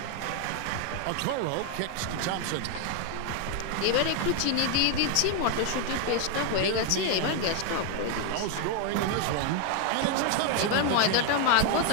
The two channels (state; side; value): different; both; correlation 0.00